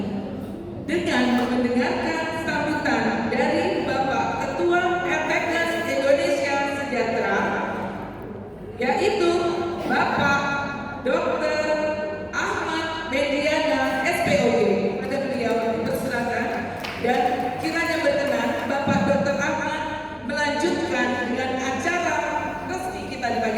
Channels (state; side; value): identical; both; correlation 1.00